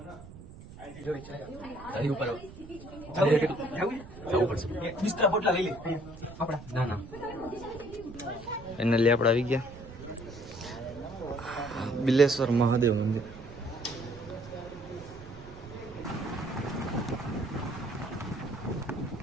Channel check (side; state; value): right; noise; rumble, 16 dB below the sound